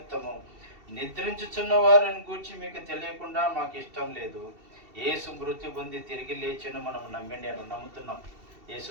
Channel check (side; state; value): left; late; 2.7 ms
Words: నిద్రించుచున్న వారిని గూర్చి మీకు తెలియకుండా మాకు ఇష్టం లేదు. యేసు మృత్యు పొంది తిరిగి లేచిన మనం నమ్ముతున్నాం. యేసు